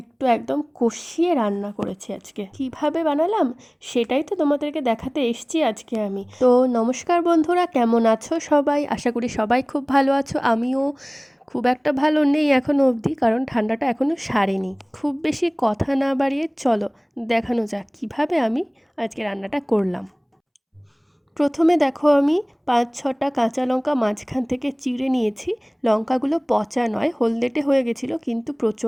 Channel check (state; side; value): identical; both; correlation 1.00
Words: একদম কষিয়ে রান্না করেছি আজকে। কিভাবে বানালাম সেটাই তো তোমাদেরকে দেখাতে এসছি আজকে আমি। তো নমস্কার বন্ধুরা, কেমন আছো সবাই? আশা করি সবাই খুব ভালো আছো। আমিও খুব একটা ভালো নেই এখনও অবধি, কারণ ঠান্ডাটা এখনও সারেনি। খুব বেশি কথা না বাড়িয়ে চলো দেখানো যাক কীভাবে আমি আজকে রান্নাটা করলাম। প্রথমে দেখো, আমি 5-6টা কাঁচা লঙ্কা মাঝখান থেকে চিড়ে নিয়েছি। লঙ্কাগুলো পচা নয়, হলদেটে হয়ে গেছিলো, কিন্তু